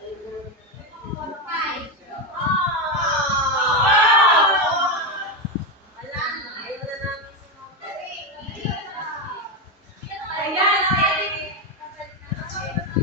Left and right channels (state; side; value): normal; both; correlation 0.10